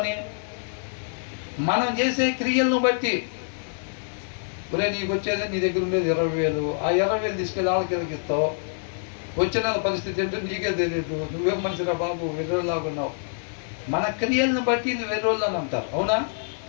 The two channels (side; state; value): right; silent; digital silence